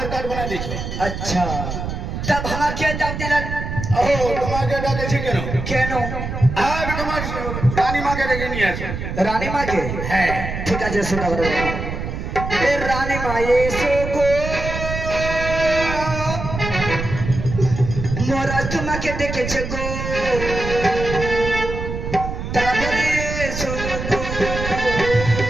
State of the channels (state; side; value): noise; right; rumble, 5 dB below the sound